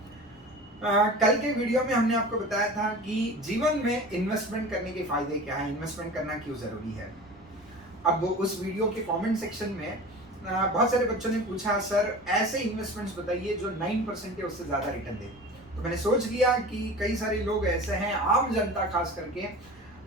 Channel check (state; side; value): noise; right; rumble, 26 dB below the sound